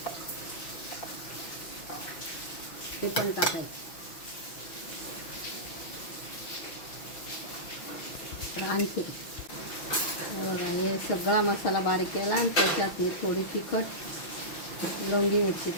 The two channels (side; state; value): right; late; 6.0 ms